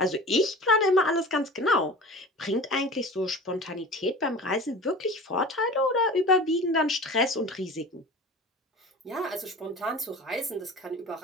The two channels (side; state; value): both; normal; correlation 0.37